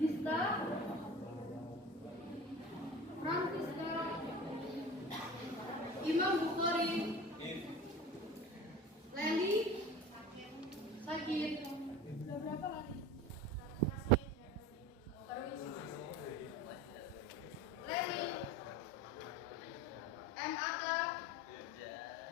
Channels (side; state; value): both; normal; correlation 0.36